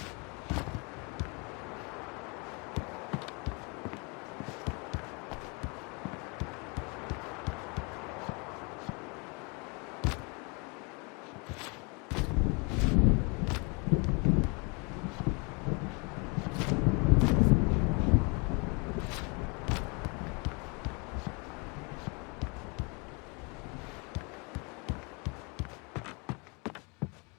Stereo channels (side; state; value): right; quieter; 31.9 dB